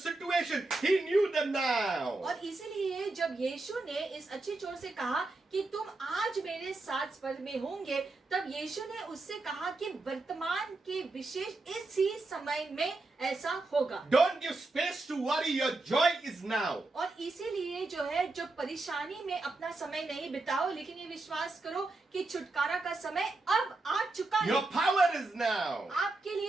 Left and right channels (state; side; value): quieter; left; 3.2 dB